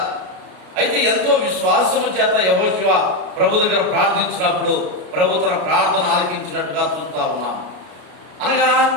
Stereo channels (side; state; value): left; late; 33 ms